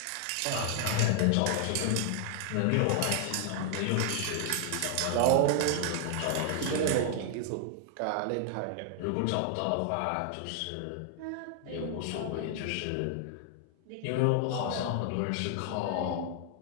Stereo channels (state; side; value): different; both; correlation 0.00